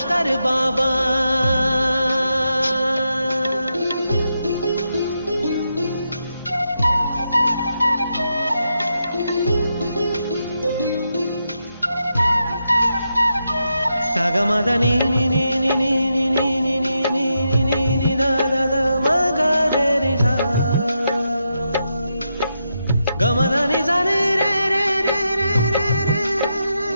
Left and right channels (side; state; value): both; inverted; correlation -0.85